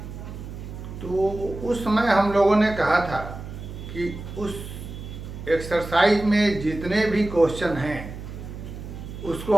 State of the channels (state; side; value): noise; right; hum, 10 dB below the sound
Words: तो उस समय हम लोगों ने कहा था कि उस एक्सरसाइज में जितने भी क्वेश्चन हैं उसको